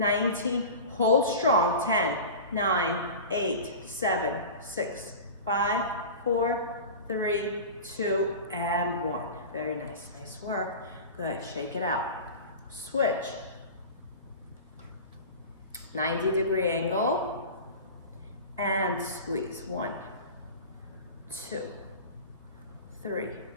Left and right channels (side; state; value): both; inverted; correlation -0.32